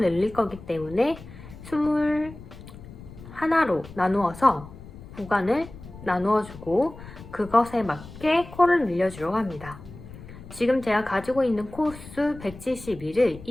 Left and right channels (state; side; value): noise; left; rumble, 16 dB below the sound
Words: 늘릴 거기 때문에 21하로 나누어서 구간을 나누어주고 그것에 맞게 코를 늘려주려고 합니다. 지금 제가 가지고 있는 코수 172를